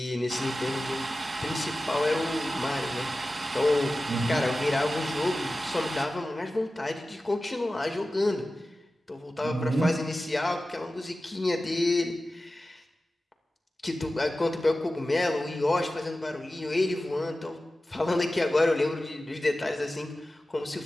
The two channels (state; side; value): normal; both; correlation 0.95